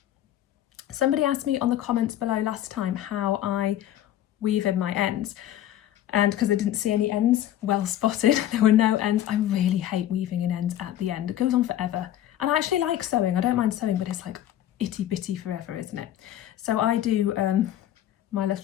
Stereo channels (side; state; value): right; quieter; 12.2 dB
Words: Somebody asked me on the comments below last time how I weave in my ends, and because I didn't see any ends well spotted, there were no ends. I really hate weaving in ends at the end. It goes on forever, and I actually like sewing. I don't mind sewing, but it's like itty bitty forever, isn't it? So I do, my